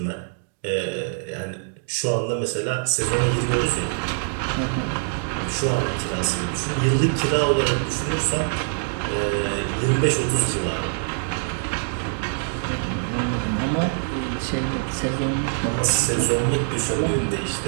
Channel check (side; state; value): left; silent; 63 dB below the other